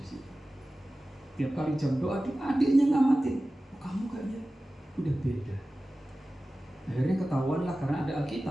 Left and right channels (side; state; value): both; normal; correlation 0.96